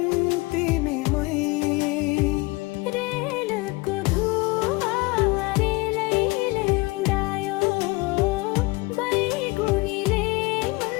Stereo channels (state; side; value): quieter; right; 24.2 dB